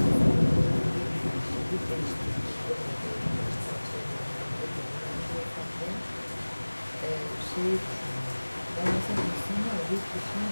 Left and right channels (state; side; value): inverted; both; correlation -1.00